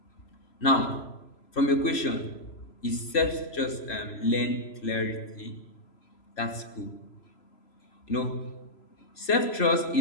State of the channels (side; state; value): right; late; 3.0 ms